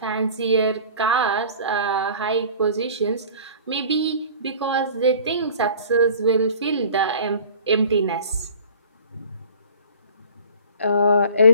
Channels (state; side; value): inverted; both; correlation -0.45